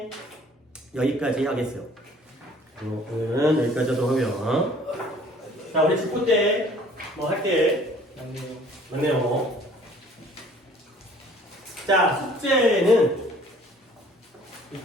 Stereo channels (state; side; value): normal; both; correlation 0.54